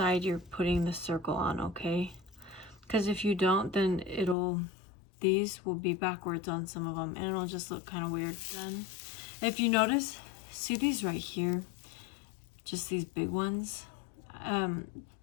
you're putting the circle on, okay? Because if you don't, then these will be backwards on some of them and it'll just look kind of weird. Then, if you notice, see these right here, just these big ones.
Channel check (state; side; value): drops out; right; at 4.4 s